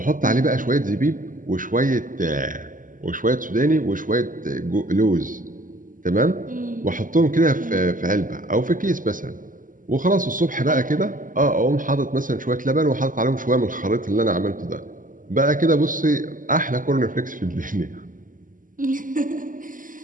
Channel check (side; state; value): left; late; 0.39 ms